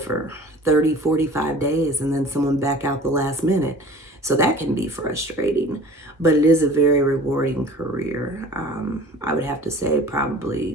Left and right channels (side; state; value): both; normal; correlation 0.44